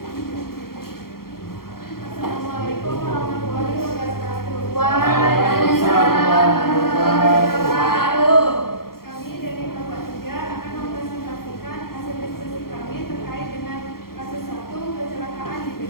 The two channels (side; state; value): right; late; 0.93 ms